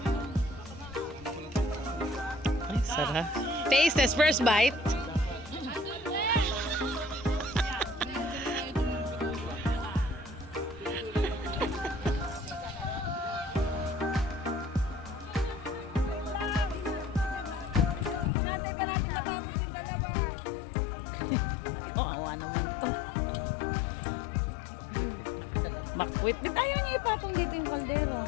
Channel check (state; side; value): drops out; right; at 18.3 s